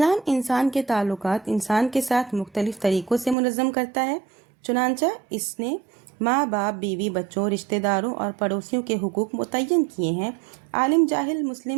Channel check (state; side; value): drops out; left; at 3.4 s